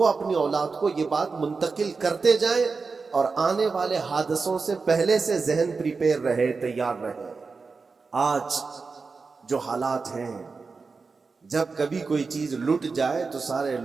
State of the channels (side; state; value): left; quieter; 4.5 dB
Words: اولاد کو یہ بات منتقل کرتے جائیں اور آنے والے حادثوں سے پہلے سے ذہن پریپیئر رہے، تیار رہے. آج جو حالات ہیں، جب کبھی کوئی چیز لٹ جائے تو سارے